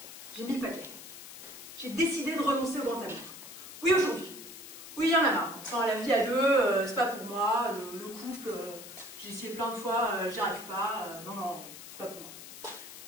J'ai mis le paquet. J'ai décidé de renoncer au grand amour. Oui, aujourd'hui. Oui, il y en a marre. Enfin, la vie à deux, c'est pas pour moi. Le couple, j'ai essayé plein de fois, j'y arrive pas. Non, non, c'est pas pour moi.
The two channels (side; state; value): left; noise; hiss, 14 dB below the sound